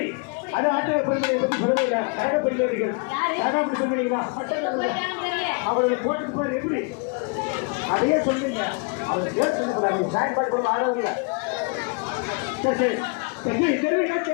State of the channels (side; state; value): right; quieter; 32.8 dB